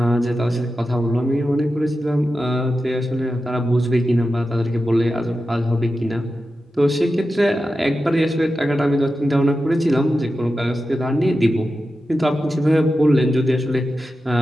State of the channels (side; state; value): both; normal; correlation 0.91